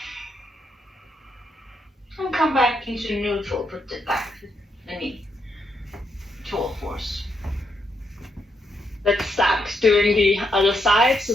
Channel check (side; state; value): both; normal; correlation 0.79